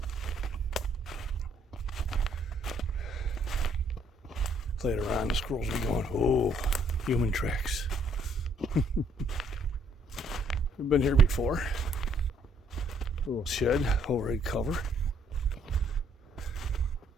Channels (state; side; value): normal; both; correlation 0.66